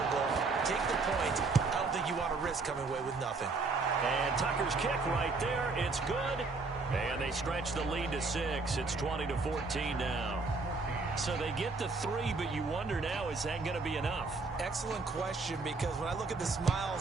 goal, take the point. I don't think you want to risk coming away with nothing. And Tucker's kick right there. It's good. And they stretch the lead to 6. It's 20-14 now. So they get the 3, but you wonder now, is that going to be enough? Excellent question, because when I look at the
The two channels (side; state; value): left; quieter; 3.9 dB